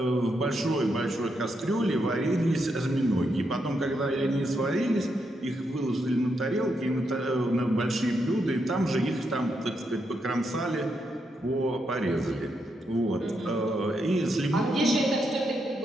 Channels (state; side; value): normal; both; correlation 0.81